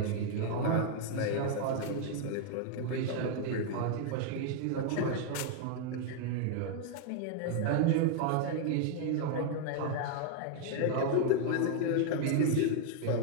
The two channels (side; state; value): both; different; correlation 0.00